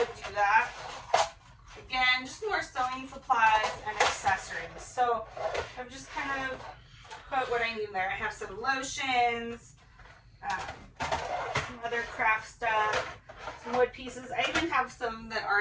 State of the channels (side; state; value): both; identical; correlation 1.00